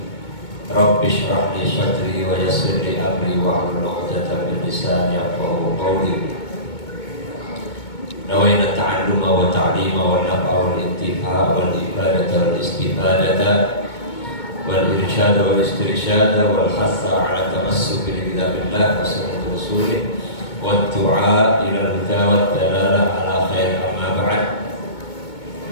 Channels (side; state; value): right; late; 2.2 ms